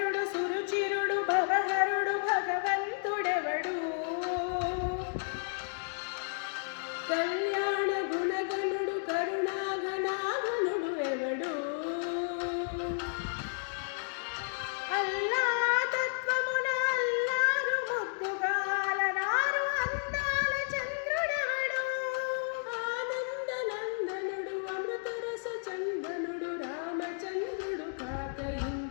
సురుచిరుడు భవహరుడు భగవంతుడెవడు కళ్యాణ గుణగణుడు కరుణాగణాగణుడు ఎవడు అల్లా తత్వమున అల్లారు ముద్దుగాలనారు అందాల చంద్రుడెవడు ఆనంద నందనుడు అమృతరస చందనుడు రామచంద్రుడు కాక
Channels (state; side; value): silent; right; digital silence